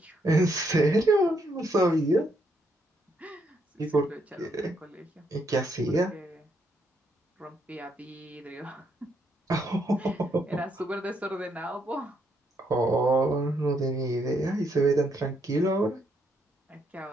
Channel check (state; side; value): normal; both; correlation 0.75